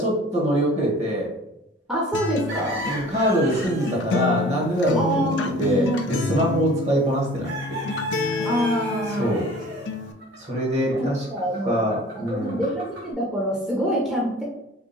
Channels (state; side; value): normal; both; correlation 0.46